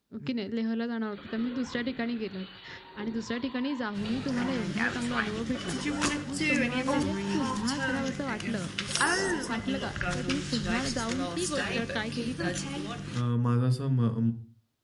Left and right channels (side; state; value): both; identical; correlation 1.00